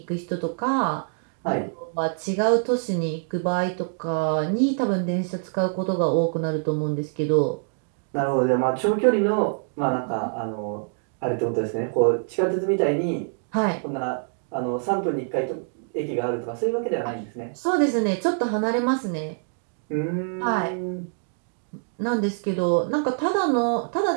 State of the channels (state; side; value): silent; left; digital silence